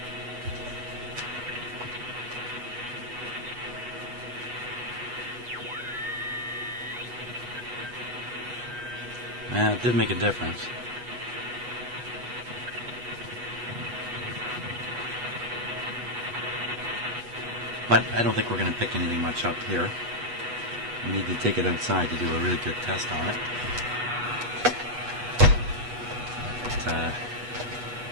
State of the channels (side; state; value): left; late; 8.2 ms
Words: Yeah, it did make a difference. But I don't think we're going to pick anything much up here. We need to take it outside to do a really good test on it. But,